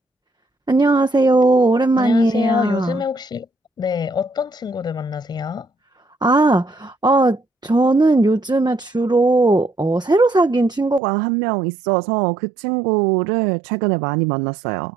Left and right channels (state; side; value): drops out; left; at 11.0 s